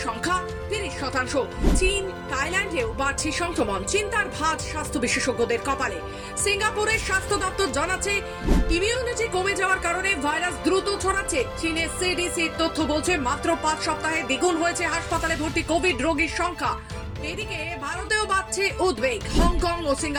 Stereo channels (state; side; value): identical; both; correlation 1.00